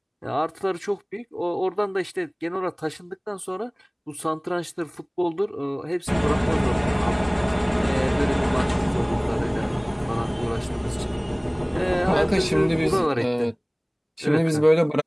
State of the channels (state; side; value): identical; both; correlation 1.00